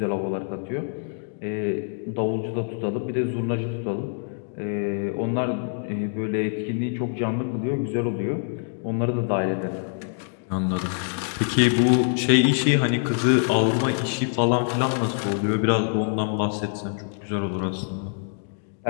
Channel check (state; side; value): silent; right; digital silence